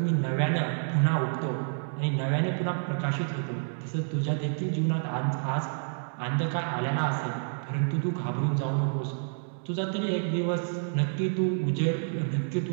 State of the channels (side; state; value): left; silent; digital silence